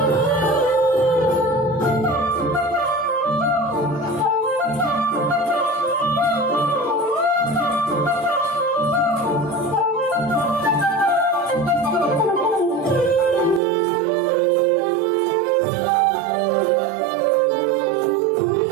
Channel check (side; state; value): left; drops out; at 13.6 s